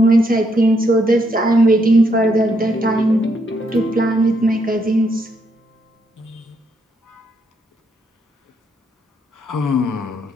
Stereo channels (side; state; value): both; normal; correlation 0.75